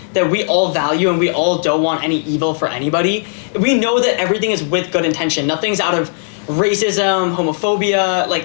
that we all value and we all don't want any evil for anybody, we know that everything is with good intention. Nothing's out of racism, homophobia,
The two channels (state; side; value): silent; right; 68 dB below the other